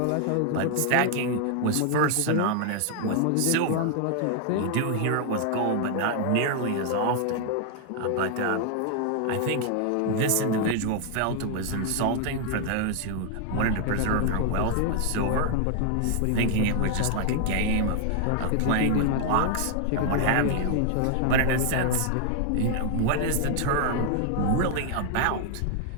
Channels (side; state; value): both; different; correlation 0.00